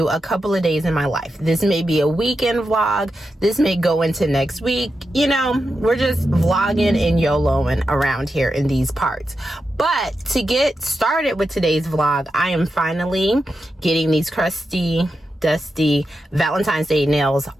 a couple of days in my life. This may be a weekend vlog, this may go into next week. You know, we're just vlogging and YOLOing around here in these parts. But to get started with today's vlog, I am finally getting these crusty, dusty Valentine's Day nails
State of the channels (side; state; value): both; normal; correlation 0.88